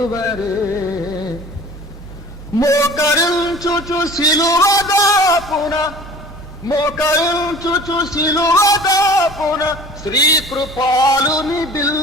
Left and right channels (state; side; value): normal; both; correlation 0.44